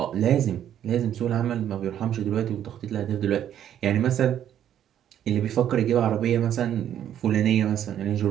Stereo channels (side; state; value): left; quieter; 10.4 dB